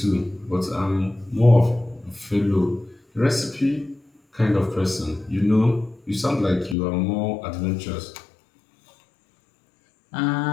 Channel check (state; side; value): drops out; right; at 6.8 s